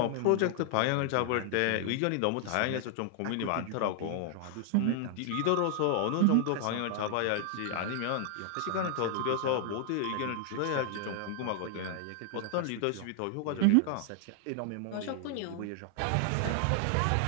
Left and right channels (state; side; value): different; both; correlation 0.00